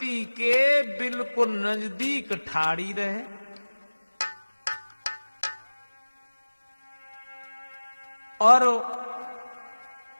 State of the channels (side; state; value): both; inverted; correlation -1.00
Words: के बिल्कुल नजदीक ठाड़ी रहे। और